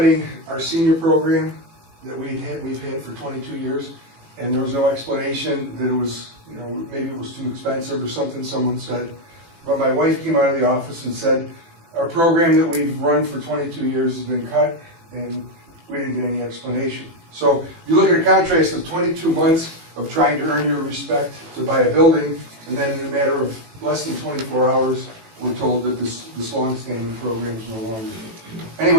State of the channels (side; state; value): left; late; 18 ms